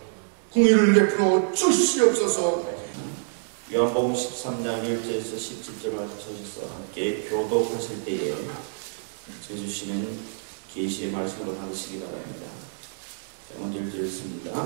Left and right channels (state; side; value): silent; left; digital silence